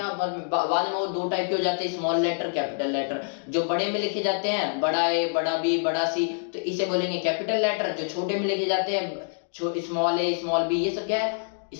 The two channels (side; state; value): right; silent; digital silence